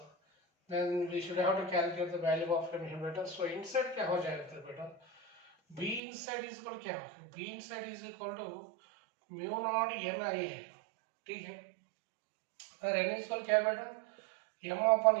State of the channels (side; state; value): left; drops out; at 6.0 s